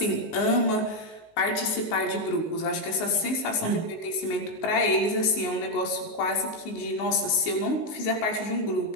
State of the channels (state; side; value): late; right; 19 ms